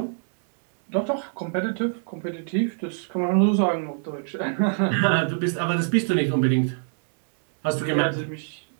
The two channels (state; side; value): silent; left; digital silence